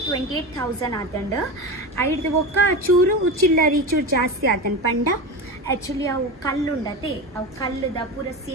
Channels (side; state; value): both; normal; correlation 0.24